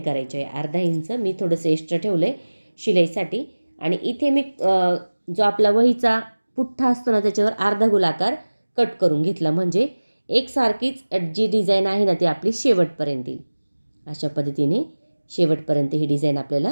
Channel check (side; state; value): both; inverted; correlation -1.00